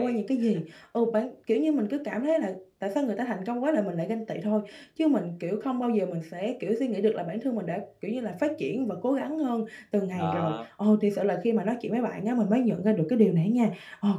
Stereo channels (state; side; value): identical; both; correlation 1.00